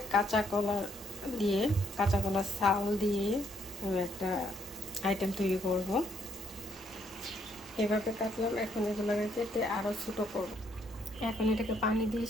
কাঁচা কলা দিয়ে, কাঁচা কলার চাল দিয়ে আমি একটা আইটেম তৈরি করব। এভাবে কাটলাম, এখন এগুলোকে কেটে আরও ছোটো করব। এখন এটাকে পানি দিয়ে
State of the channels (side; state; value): both; normal; correlation 0.71